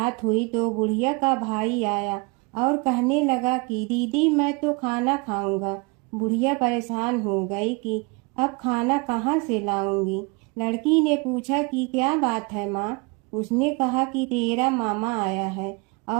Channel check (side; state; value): left; quieter; 29.0 dB